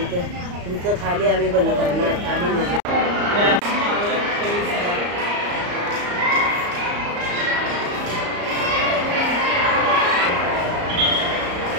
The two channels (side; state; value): left; late; 34 ms